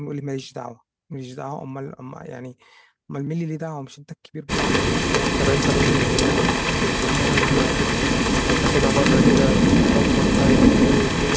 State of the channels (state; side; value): identical; both; correlation 1.00